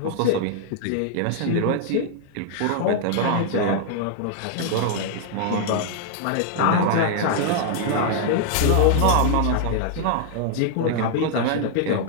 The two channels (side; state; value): both; different; correlation 0.00